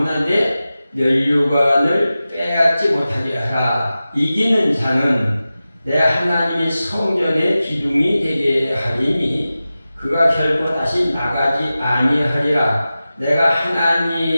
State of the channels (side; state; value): both; inverted; correlation -0.95